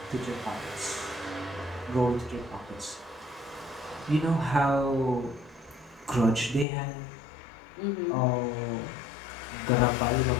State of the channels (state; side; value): drops out; right; at 6.7 s